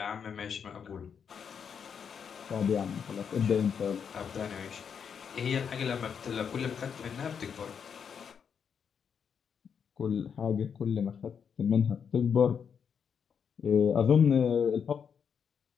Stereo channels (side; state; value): right; quieter; 7.1 dB